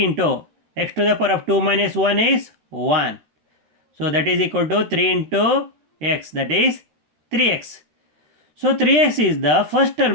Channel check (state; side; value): late; left; 13 ms